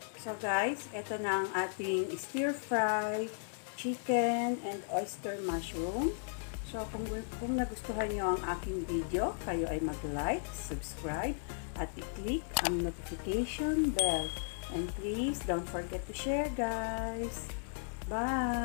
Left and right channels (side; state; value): right; silent; digital silence